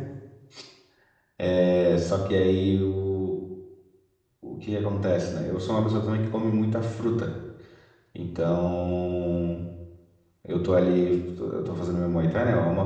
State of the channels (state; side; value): identical; both; correlation 1.00